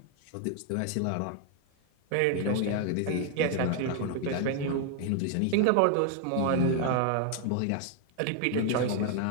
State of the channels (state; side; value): different; both; correlation 0.00